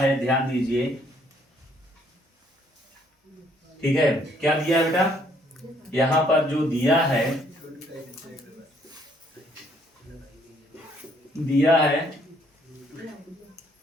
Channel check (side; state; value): both; normal; correlation 0.66